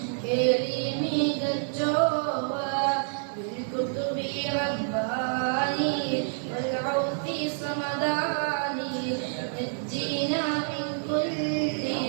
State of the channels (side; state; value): left; silent; digital silence